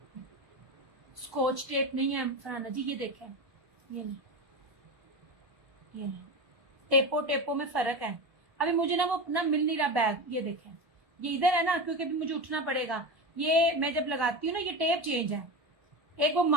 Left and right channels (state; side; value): late; left; 1.1 ms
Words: स्कॉच टेप नहीं है फरहाना जी, ये देखें, ये नहीं, ये नहीं, टेपो में फर्क है। अभी मुझे ना वो अपना मिल नहीं रहा बैग, ये देखें, ये इधर है ना, क्योंकि अभी मुझे उठना पड़ेगा। ये मैं जब लगाती हूँ ना, ये टेप चेंज है, एक वो